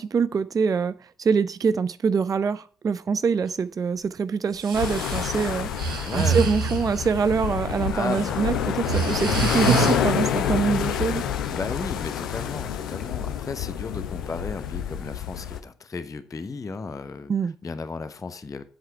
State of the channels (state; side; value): normal; both; correlation 0.65